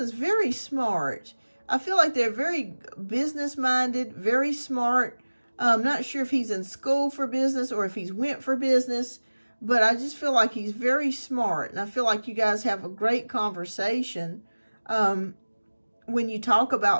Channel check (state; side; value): inverted; both; correlation -1.00